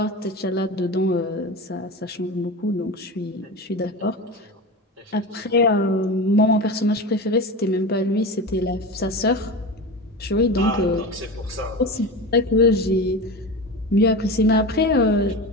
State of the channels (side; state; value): both; normal; correlation 0.26